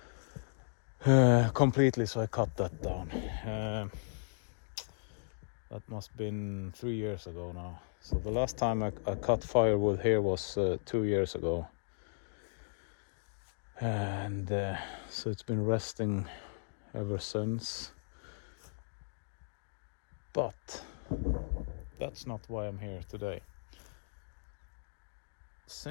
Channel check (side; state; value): right; silent; digital silence